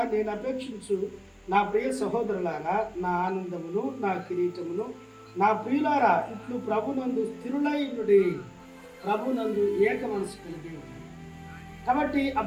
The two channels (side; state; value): both; identical; correlation 1.00